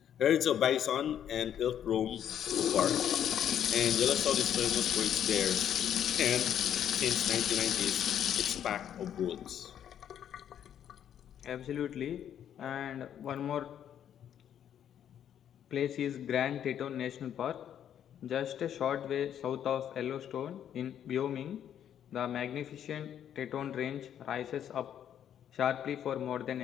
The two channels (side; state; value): right; quieter; 9.7 dB